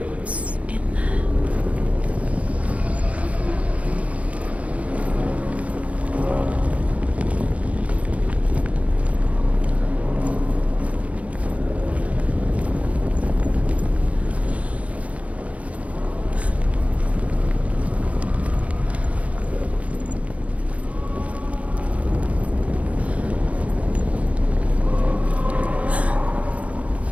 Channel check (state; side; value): late; left; 0.066 ms